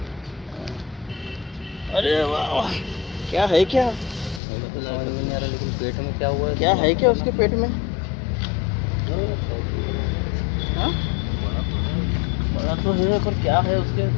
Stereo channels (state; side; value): drops out; right; at 4.4 s